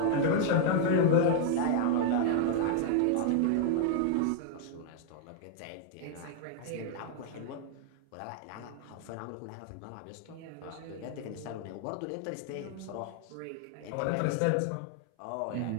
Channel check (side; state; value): both; different; correlation 0.00